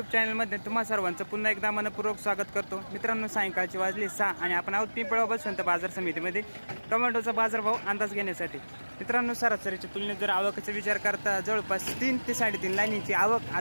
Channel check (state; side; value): inverted; both; correlation -1.00